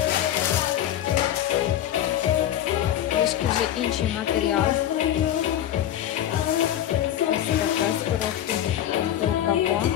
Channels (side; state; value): right; quieter; 11.5 dB